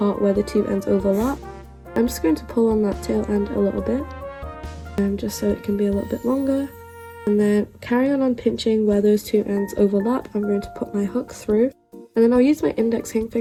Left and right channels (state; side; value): identical; both; correlation 1.00